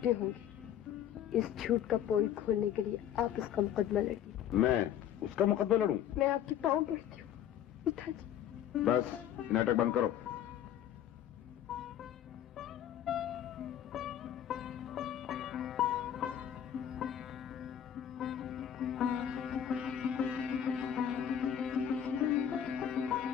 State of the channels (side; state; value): right; quieter; 10.1 dB